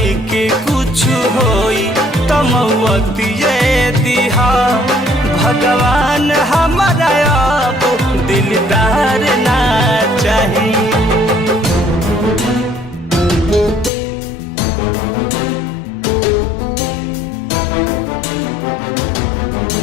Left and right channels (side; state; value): right; drops out; at 13.9 s